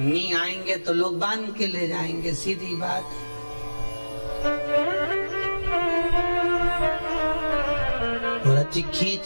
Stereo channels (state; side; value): inverted; both; correlation -1.00